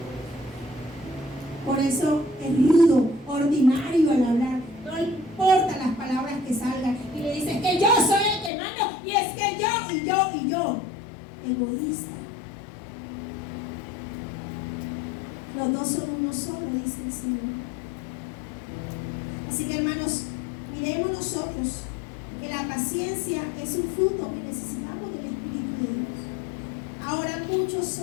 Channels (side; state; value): right; drops out; at 8.5 s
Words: Por eso es rudo, ordinario al hablar. No importa las palabras que salgan. Y le dice que yo soy el que mando. Y es que yo. egoísta. Los dos son uno solo, dice el Señor. Así que, hermanos, miremos nosotros que la paciencia es un fruto que necesitamos del Espíritu de Dios. Ahora muchos